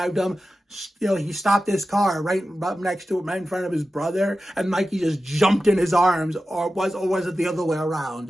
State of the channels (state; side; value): normal; both; correlation 0.93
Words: him. He stopped his car right up next to him, right in front of his brother, and Mikey just jumped in his arms, or was it the other way